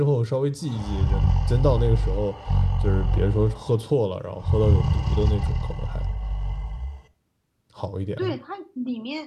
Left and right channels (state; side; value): identical; both; correlation 1.00